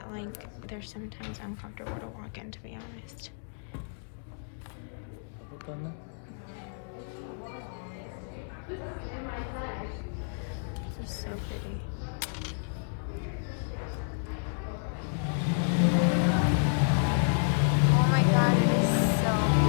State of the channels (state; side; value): silent; right; digital silence